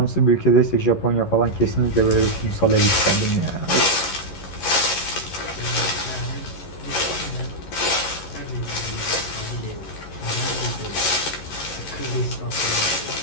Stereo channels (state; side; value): late; right; 11 ms